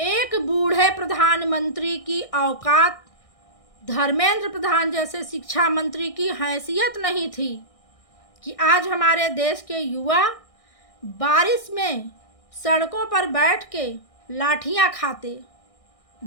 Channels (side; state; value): right; late; 1.6 ms